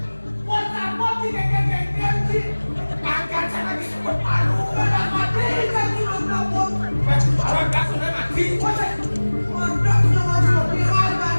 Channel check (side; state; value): both; inverted; correlation -1.00